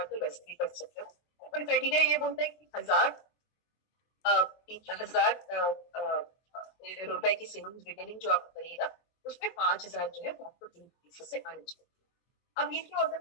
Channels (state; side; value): late; right; 23 ms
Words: हो, वैसे भी कर सकते हो। और क्राइटेरिया ये बोलता है कि 1,000 रुपए की सेविंग्स रिटेलिंग जो आप करिएगा उसमें 5,000 जो है वो आपको 3 पीसी से आने चाहिए। अब ये क्या होता